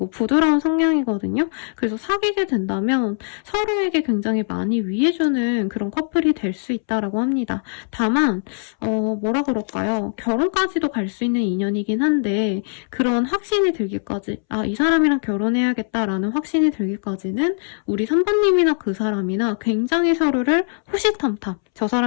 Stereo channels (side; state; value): right; silent; 65 dB below the other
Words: 부드러운 성향이거든요. 그래서 사귀게 된다면 서로에게 굉장히 많이 위해주는 그런 커플이 될 수 있다라고 합니다. 다만 뭐라 그럴까요? 결혼까지도 갈 수 있는 인연이긴 한데 그런 확신이 들기까지, 이 사람이랑 결혼해야겠다라는 확신이 들기까지는 우리 3번님이나 그 사람이나 굉장히 서로를 호시탐탐, 저